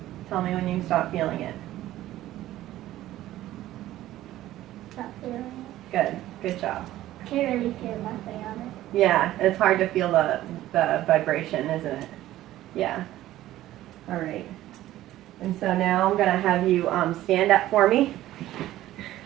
Tell me when you stop feeling it. Stop feeling it. Good. Good job. Can't really feel nothing on it. Yeah, it's hard to feel the vibration, isn't it? Yeah. All right. And so now I'm going to have you stand up for me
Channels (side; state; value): left; quieter; 14.6 dB